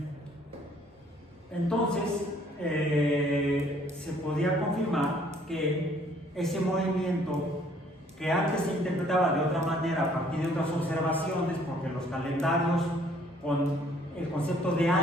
Entonces, se podía confirmar que ese movimiento, que antes se interpretaba de otra manera a partir de otras observaciones, porque los calendarios con el concepto de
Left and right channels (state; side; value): normal; both; correlation 0.61